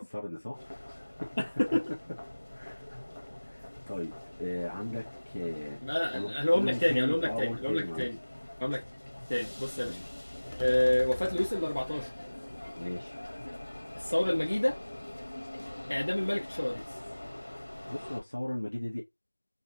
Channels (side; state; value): both; inverted; correlation -1.00